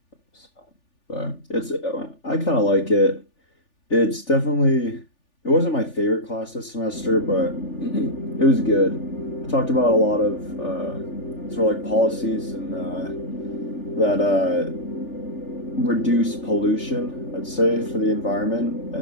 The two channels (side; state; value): right; late; 3.4 ms